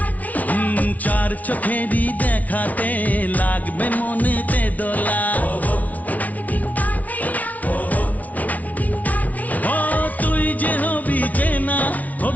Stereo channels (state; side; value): late; right; 0.072 ms